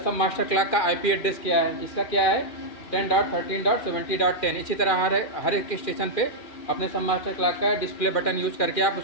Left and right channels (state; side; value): late; right; 2.4 ms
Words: सब मास्टर क्लॉक का आईपी एड्रेस क्या है, इसका क्या है 10.13.70.10। इसी तरह हर एक स्टेशन पे अपने सब मास्टर क्लॉक का डिस्प्ले बटन यूज करके आप